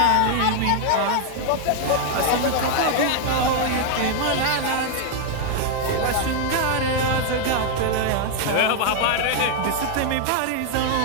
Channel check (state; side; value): different; both; correlation 0.00